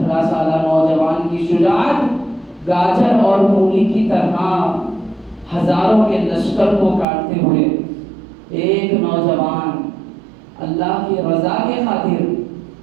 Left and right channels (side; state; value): left; drops out; at 7.1 s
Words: سالہ نوجوان کی شجاعت گاجر اور مولی کی طرح ہزاروں کے لشکر کو کاٹتے ہوئے ایک نوجوان اللہ کی رضا کے خاطر